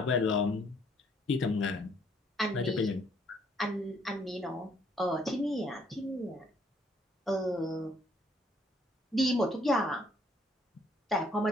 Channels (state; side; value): normal; both; correlation 0.65